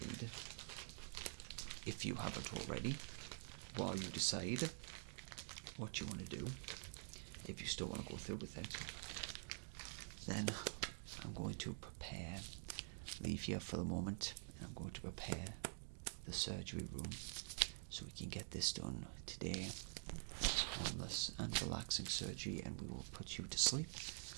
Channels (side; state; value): left; silent; digital silence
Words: if you haven't already, while you decide what you want to do, if you still want to go through with it, then I'm going to leave here for the moment, and I'm going to prepare the surgery room so we can get this done today as painless and relaxing surgery, and we will put you to sleep.